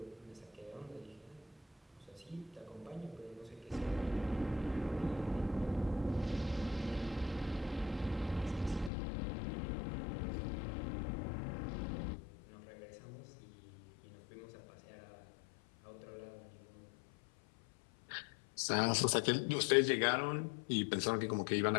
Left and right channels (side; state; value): right; drops out; at 8.9 s